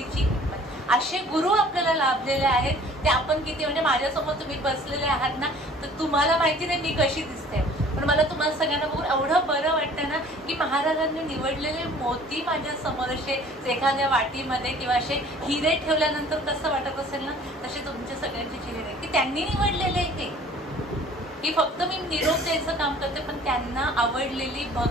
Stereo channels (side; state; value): both; normal; correlation 0.51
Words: असे गुरु आपल्याला लाभलेले आहेत. ते आपण किती म्हणजे माझ्यासमोर तुम्ही बसलेले आहात ना, तर तुम्हाला माहिती नाही मी कशी दिसते, पण मला तुम्हाला सगळ्यांना बघून एवढं बरं वाटतं ना की महाराजांनी निवडलेले मोती माझ्या समोर असे एखाद्या वाटीमध्ये किंवा असे हिरे ठेवल्यानंतर कसं वाटत असेल ना, तसे तुमच्या सगळ्यांचे चेहरे की त्यांनी निवडलेले हे की फक्त मी निरोप द्यायचं काम करते, पण त्यांना आवडलेली